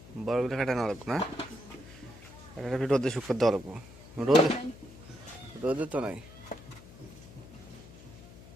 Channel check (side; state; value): left; noise; hum, 18 dB below the sound